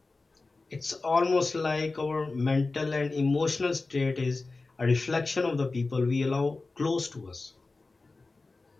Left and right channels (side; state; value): right; quieter; 3.6 dB